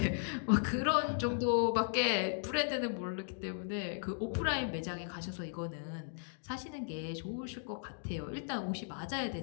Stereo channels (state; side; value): silent; right; digital silence